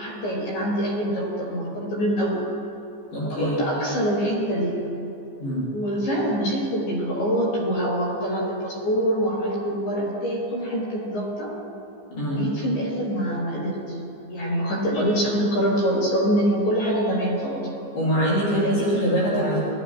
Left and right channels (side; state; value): right; late; 15 ms